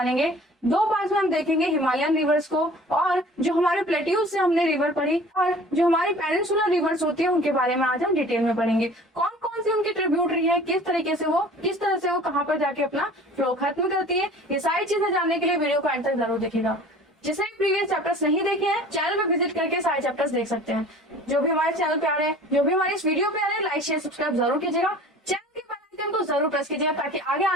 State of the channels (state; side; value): normal; both; correlation 0.45